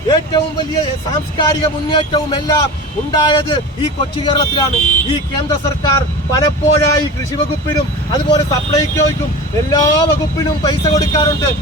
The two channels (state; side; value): normal; both; correlation 0.32